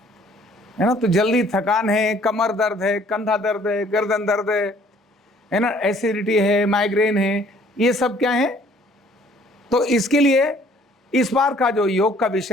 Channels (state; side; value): normal; both; correlation 0.58